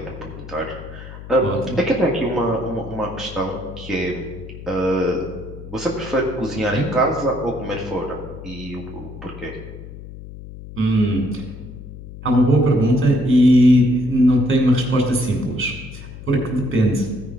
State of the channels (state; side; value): noise; left; hum, 14 dB below the sound